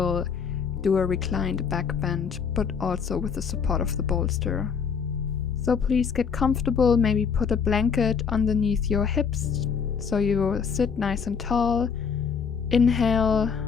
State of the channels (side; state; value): right; quieter; 6.3 dB